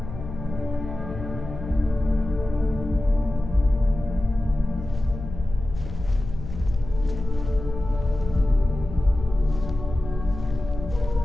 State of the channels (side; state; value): left; noise; hum, 10 dB below the sound